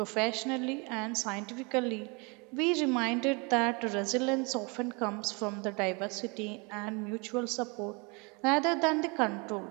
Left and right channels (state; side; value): quieter; left; 30.5 dB